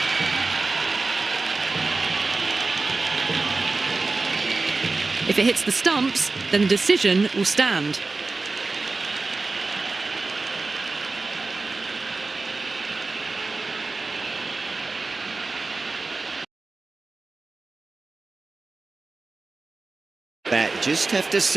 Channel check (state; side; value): quieter; left; 3.7 dB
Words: If it hits the stumps, then the decision will stand. Bat just have to